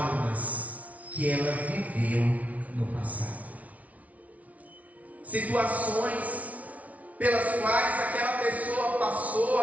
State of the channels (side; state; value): left; late; 0.069 ms